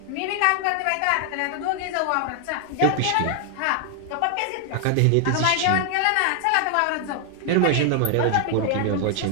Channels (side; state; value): both; different; correlation 0.00